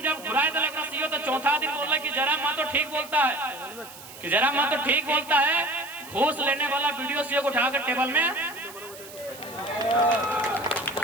जब घुराए तो सीओ, तो चौथा दिन बोल कि जयराम महतो ठीक बोलता है, कि जयराम महतो ठीक बोलता है। घूस लेने वाला वीडियो सीओ को उठाकर टेबल में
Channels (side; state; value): right; noise; hiss, 17 dB below the sound